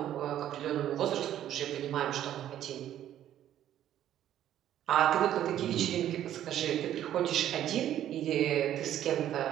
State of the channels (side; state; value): left; quieter; 11.5 dB